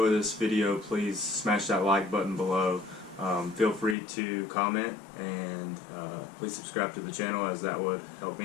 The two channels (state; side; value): drops out; right; at 4.0 s